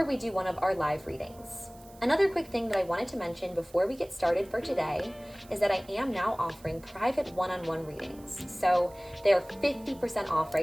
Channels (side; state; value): right; noise; hiss, 25 dB below the sound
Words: we do one of our live readings. Another quick thing that I wanted to mention before we get started for today is that I am now offering private one-on-one readings. So they're 50% off